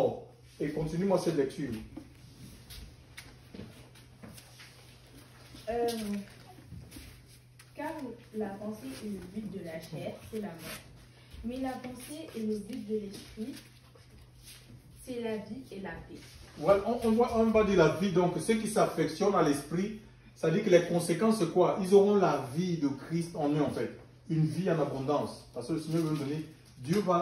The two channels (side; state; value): both; identical; correlation 1.00